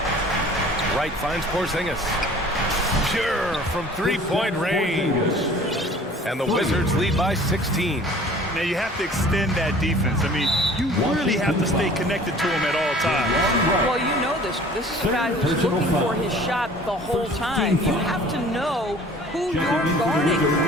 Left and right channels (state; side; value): normal; both; correlation 0.48